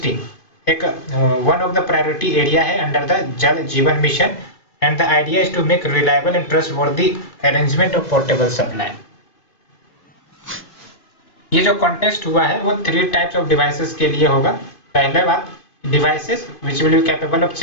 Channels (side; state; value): right; late; 2.5 ms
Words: एक one of the priority area है अंडर द जल जीवन mission and the idea is to make reliable and trustworthy arrangement of portable supply। ये जो कॉन्टेस्ट हुआ है वो 3 टाइप्स ऑफ डिवाइसेस के लिए होगा। पहले बात devices which will be capable of